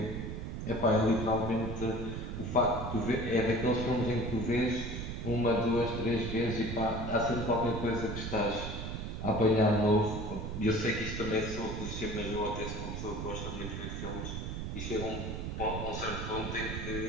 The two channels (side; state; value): right; noise; rumble, 5 dB below the sound